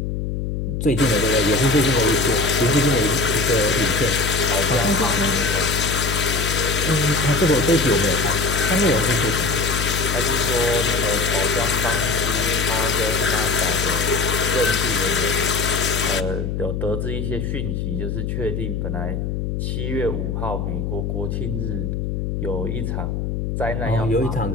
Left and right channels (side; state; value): left; noise; hum, 2 dB below the sound